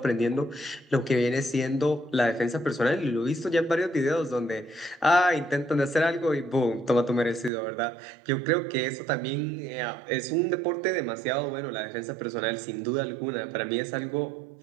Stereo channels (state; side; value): drops out; left; at 7.5 s